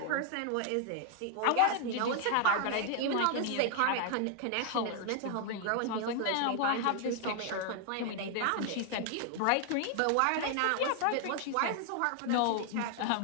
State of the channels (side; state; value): both; different; correlation 0.00